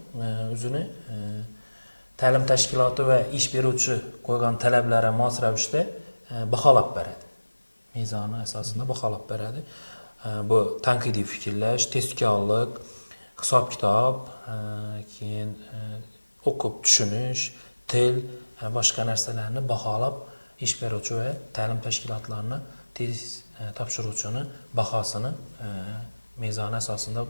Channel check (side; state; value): both; inverted; correlation -1.00